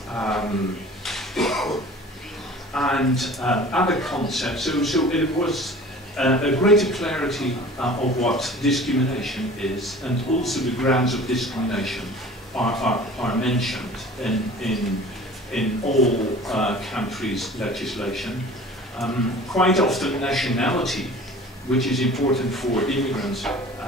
and other concepts. So it was a greater clarity of what discrimination is, and also the grounds of discrimination are mentioned in all countries' legislation. Quite often nationality, which is important for immigrants,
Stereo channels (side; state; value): both; normal; correlation 0.44